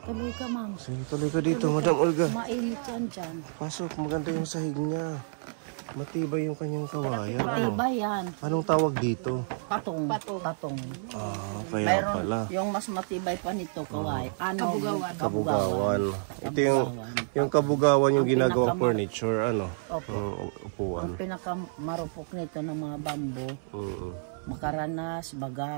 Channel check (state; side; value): silent; left; 56 dB below the other